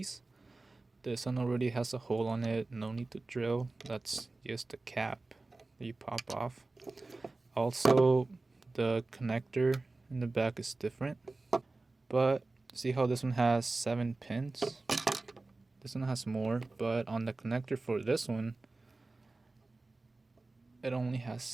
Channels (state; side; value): quieter; left; 3.3 dB